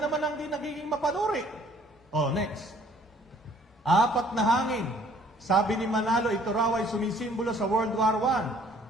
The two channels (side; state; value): both; normal; correlation 0.58